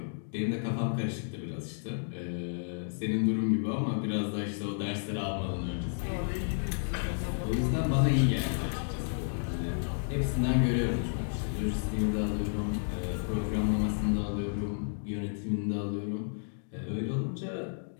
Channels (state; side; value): silent; right; digital silence